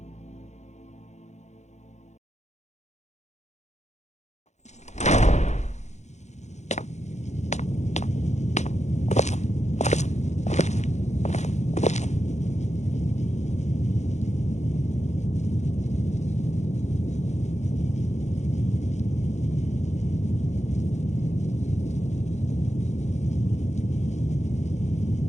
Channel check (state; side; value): late; right; 0.33 ms